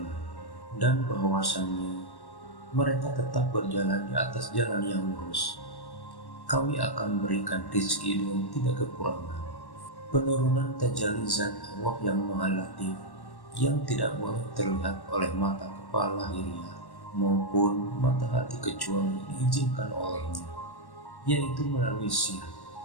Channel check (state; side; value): late; right; 1.1 ms